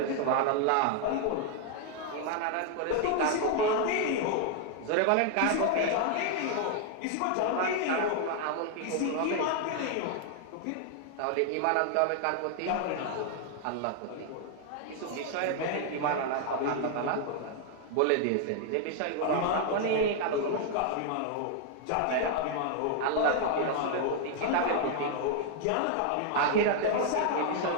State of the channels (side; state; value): both; different; correlation 0.00